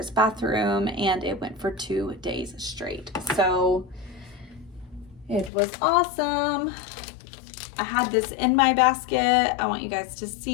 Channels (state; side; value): drops out; right; at 5.5 s